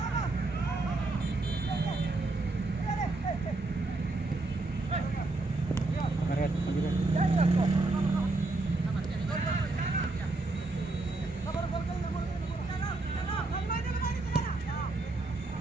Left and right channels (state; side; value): quieter; left; 3.1 dB